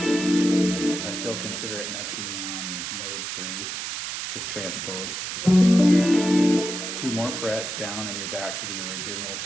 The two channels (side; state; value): right; noise; hiss, 5 dB below the sound